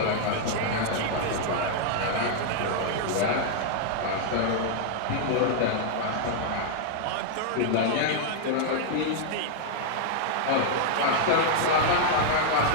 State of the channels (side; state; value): both; different; correlation 0.00